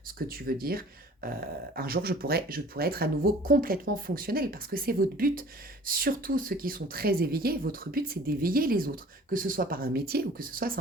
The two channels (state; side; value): normal; both; correlation 0.48